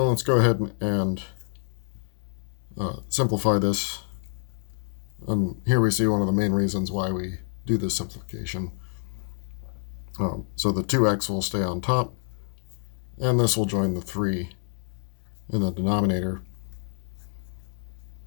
let's go ahead and simplify this. And here we see one of the main reasons why we do this simplification. So the 2x will stay on top, and this will join the 3 in the denominator.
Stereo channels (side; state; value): right; silent; 60 dB below the other